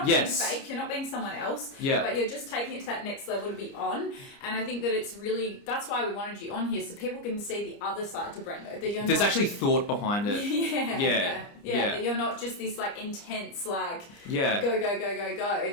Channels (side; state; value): right; late; 29 ms